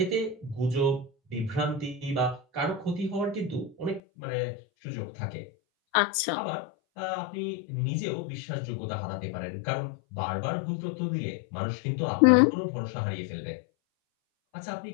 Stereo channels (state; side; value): drops out; right; at 4.0 s